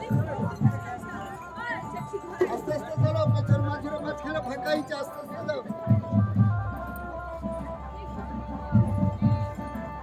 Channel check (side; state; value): both; identical; correlation 1.00